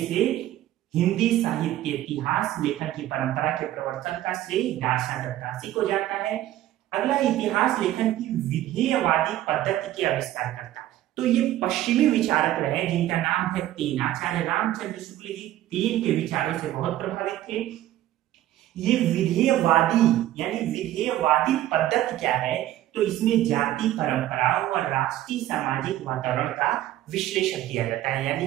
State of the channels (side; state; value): left; quieter; 13.8 dB